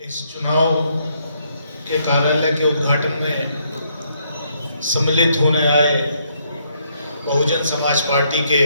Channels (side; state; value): both; inverted; correlation -0.72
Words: चुनाव के कार्यालय के उद्घाटन में सम्मिलित होने आए बहुजन समाज पार्टी के